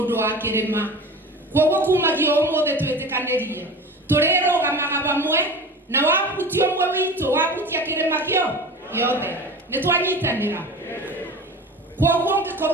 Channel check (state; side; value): normal; both; correlation 0.35